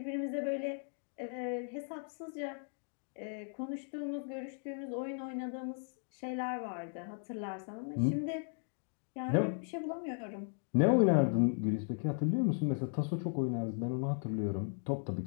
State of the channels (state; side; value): silent; right; 53 dB below the other